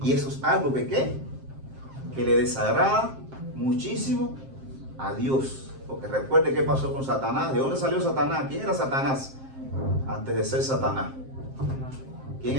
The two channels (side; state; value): left; late; 7.5 ms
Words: Y eso es algo que le desagrada muchísimo a Dios. Porque recuerde qué pasó con Satanás. ¿De dónde salió Satanás? ¿Quién era Satanás? Antes de ser Satanás. ¿Quién